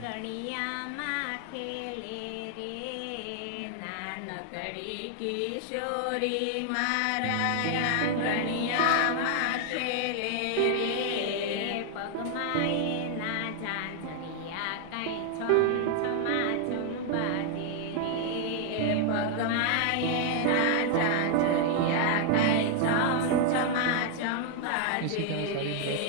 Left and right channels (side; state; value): both; different; correlation 0.00